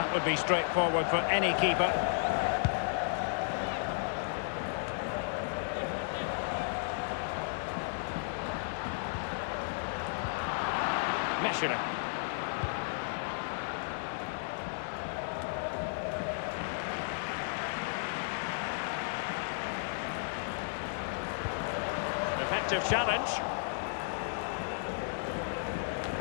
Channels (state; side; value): silent; right; digital silence